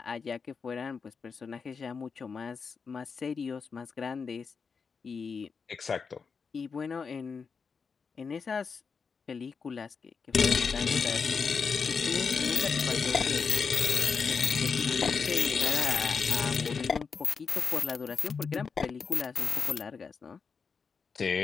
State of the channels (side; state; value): right; quieter; 5.5 dB